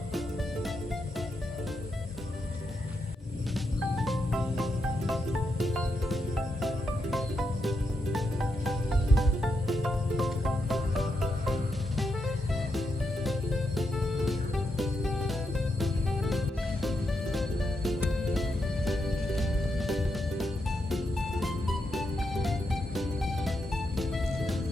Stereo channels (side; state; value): both; normal; correlation 0.83